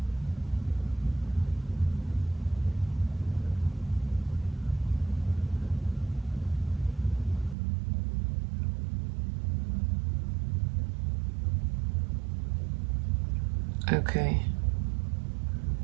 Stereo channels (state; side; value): drops out; left; at 7.6 s